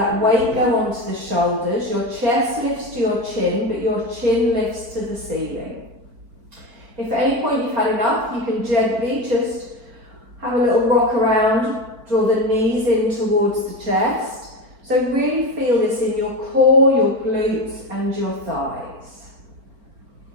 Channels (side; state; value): left; late; 4.4 ms